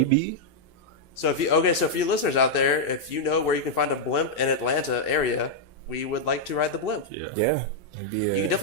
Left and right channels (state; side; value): normal; both; correlation -0.04